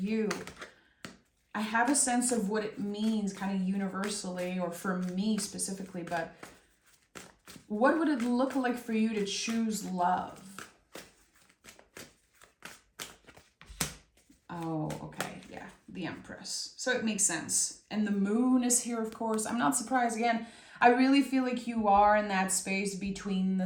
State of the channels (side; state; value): both; identical; correlation 1.00